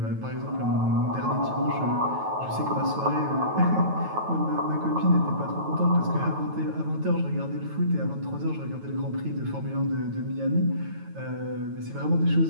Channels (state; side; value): late; left; 9.2 ms